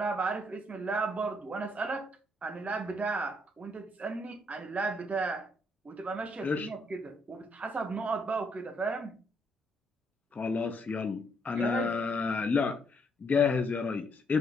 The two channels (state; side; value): normal; both; correlation 0.72